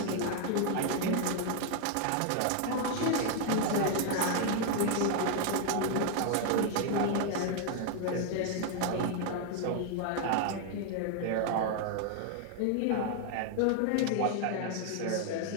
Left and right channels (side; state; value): both; different; correlation 0.00